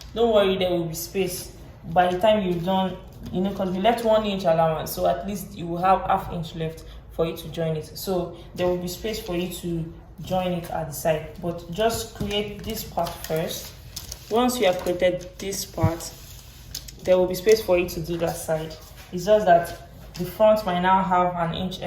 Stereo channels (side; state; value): both; identical; correlation 1.00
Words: Don't worry, there will be space by the time you've done, because we left 1 inch allowance, so at least you will have ½ inch left for you to join it. So there will be space for you to join it at the side, but just create this part first. Once you have created this part, there will be space for you to do that side. It's just that the front might now have 1 inch